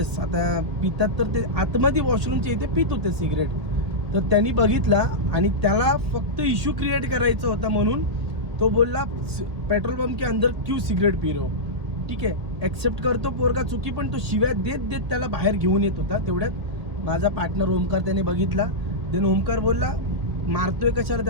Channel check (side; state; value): left; late; 1.8 ms